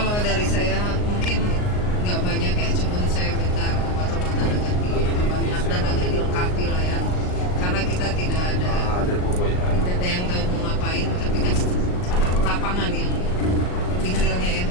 dari saya mungkin nggak banyak ya, cuman saya minta obat-obatan agak banyak dan agak dilengkapi lah ya, karena kita tidak ada yang tahu mau ngapain, tapi kan lapangan yang lebih realnya ya,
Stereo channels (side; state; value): right; late; 38 ms